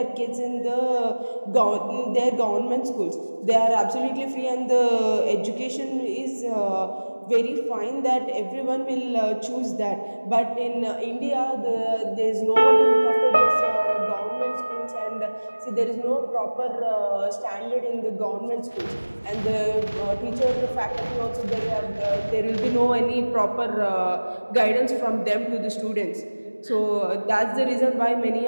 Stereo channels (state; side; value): inverted; both; correlation -1.00